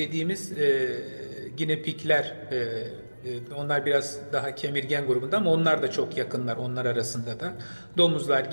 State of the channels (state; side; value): inverted; both; correlation -1.00